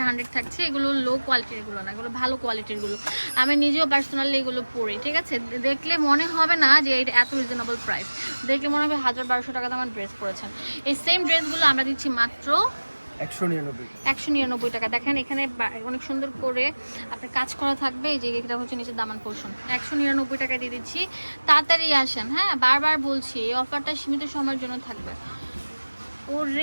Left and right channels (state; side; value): inverted; both; correlation -1.00